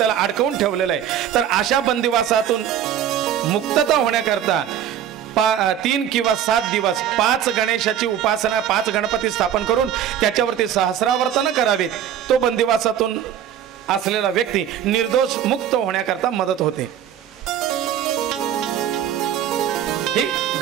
अडकवून ठेवलेलं आहे, तर अशा बंदिवासातून मुक्तता होण्याकरता 3 किंवा 7 दिवस 5 गणेशाची उपासना, 5 गणपती स्थापन करून त्याच्यावरती सहस्रावर्तन करावे. तो बंदिवासातून असलेला व्यक्ती निर्दोष मुक्त होण्याकरता मदत होते. ही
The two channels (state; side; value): quieter; left; 10.0 dB